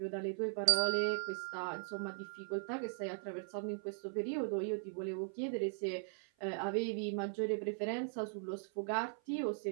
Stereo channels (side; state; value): left; silent; 52 dB below the other